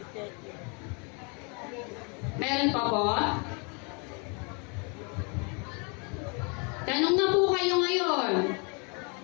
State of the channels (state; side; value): quieter; right; 34.1 dB